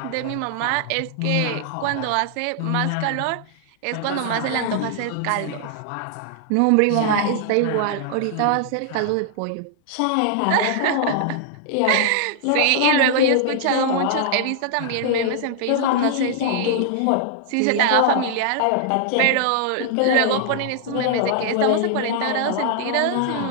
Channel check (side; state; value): both; different; correlation -0.01